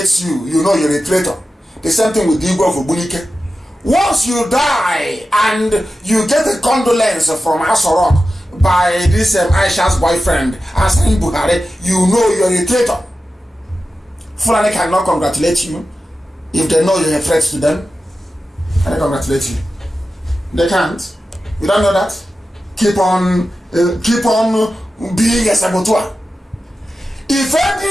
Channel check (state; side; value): normal; both; correlation 0.93